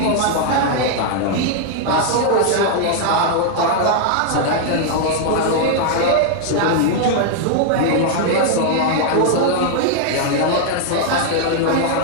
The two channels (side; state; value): both; different; correlation 0.00